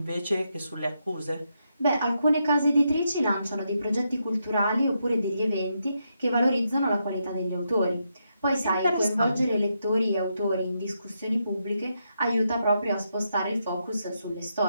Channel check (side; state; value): both; inverted; correlation -0.82